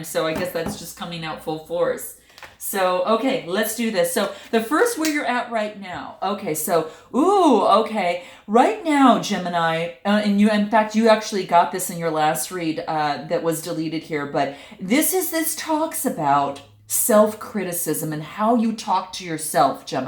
So I guess that's just coming out full force. So, okay, let's do this. So the first, where you're at right now. Okay, so, okay. Right now, Gemini, and in fact, you actually got this in your last read that was deleted here, but this talks about self-criticism and how you talk to yourself,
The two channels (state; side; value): identical; both; correlation 1.00